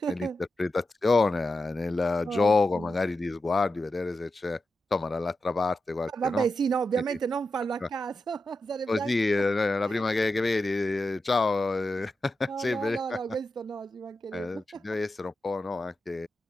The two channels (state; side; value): normal; both; correlation 0.89